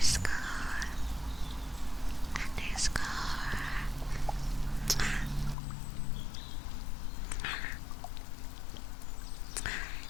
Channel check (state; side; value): drops out; right; at 5.6 s